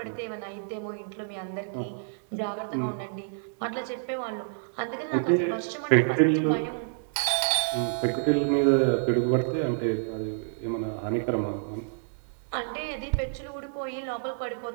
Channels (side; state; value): left; silent; digital silence